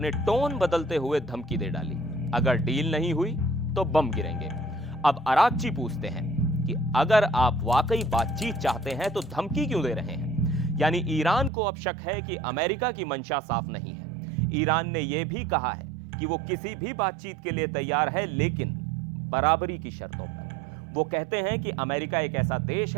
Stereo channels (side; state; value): left; drops out; at 11.5 s